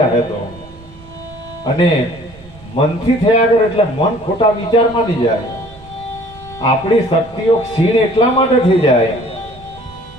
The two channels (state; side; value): noise; right; rumble, 21 dB below the sound